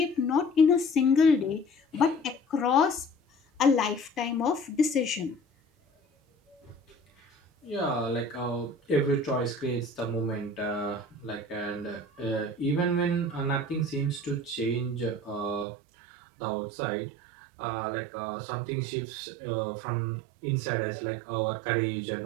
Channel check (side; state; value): left; drops out; at 15.7 s